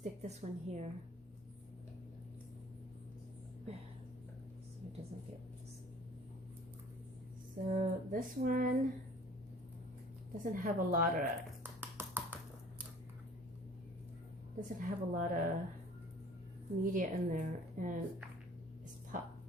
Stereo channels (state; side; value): normal; both; correlation 0.50